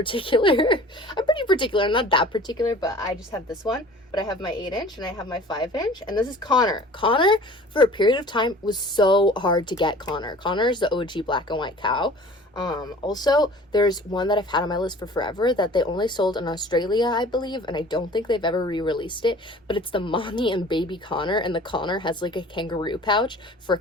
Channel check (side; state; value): both; normal; correlation 0.46